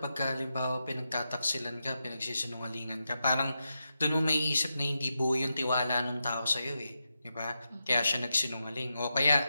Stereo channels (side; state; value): both; inverted; correlation -0.88